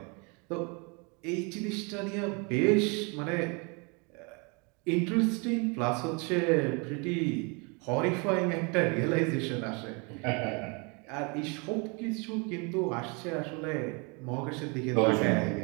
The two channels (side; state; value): left; quieter; 31.6 dB